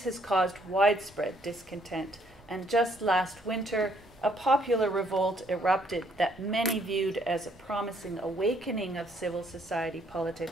has caused widespread discontent, and just last winter, a popular revolt erupted that many viewed as a promising awakening of civil society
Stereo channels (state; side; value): noise; right; rumble, 28 dB below the sound